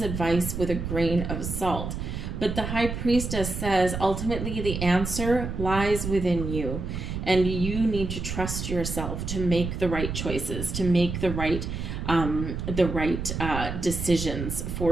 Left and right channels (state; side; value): noise; right; rumble, 5 dB below the sound